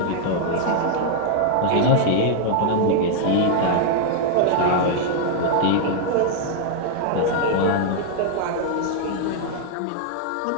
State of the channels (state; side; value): different; both; correlation 0.00